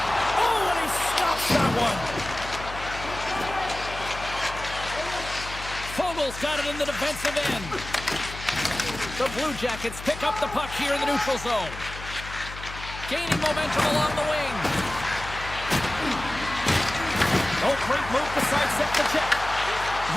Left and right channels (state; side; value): noise; left; hum, 12 dB below the sound